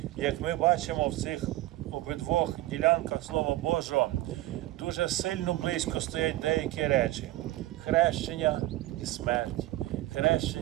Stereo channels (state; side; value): quieter; left; 16.5 dB